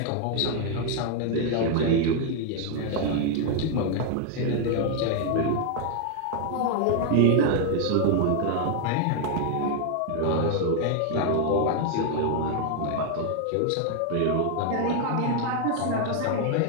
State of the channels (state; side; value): different; both; correlation 0.00